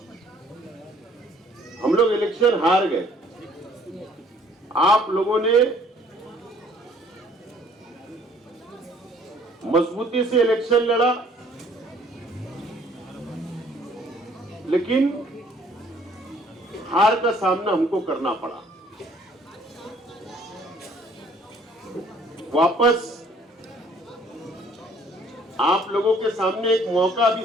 हम लोग इलेक्शन हार गए, आप लोगों ने मजबूती से इलेक्शन लड़ा, लेकिन हार का सामना हमको करना पड़ा। वापस आप लोगों के सामने एक मौका भी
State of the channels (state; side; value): normal; both; correlation 0.59